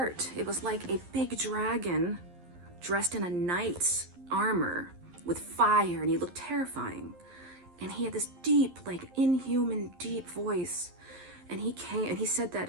it was like a big dragon dressed in a knight's armor with fire, and he looked terrifying. And he had this deep, like inhuman deep voice. And he came and he said that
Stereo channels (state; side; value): late; left; 11 ms